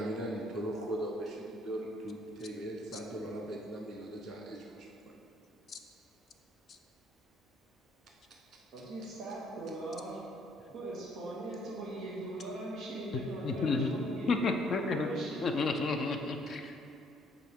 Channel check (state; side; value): normal; both; correlation 0.64